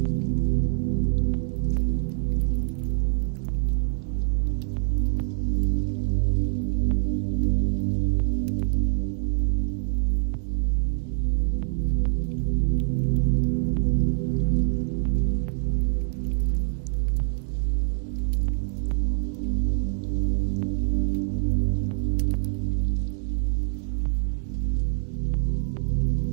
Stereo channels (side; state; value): left; silent; digital silence